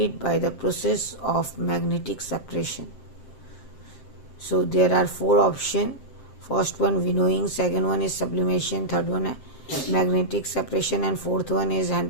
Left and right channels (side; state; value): right; late; 7.6 ms